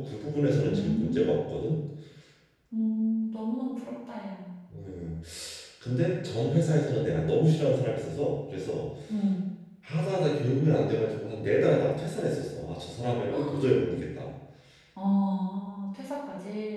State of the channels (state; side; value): identical; both; correlation 1.00